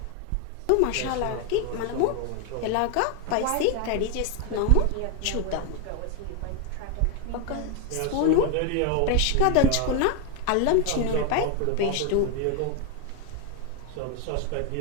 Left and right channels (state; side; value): different; both; correlation 0.01